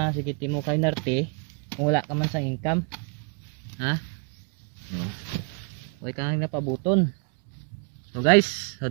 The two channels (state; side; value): quieter; left; 34.1 dB